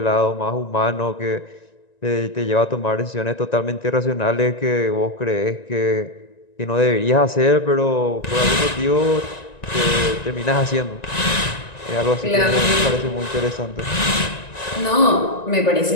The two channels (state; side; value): late; right; 1.9 ms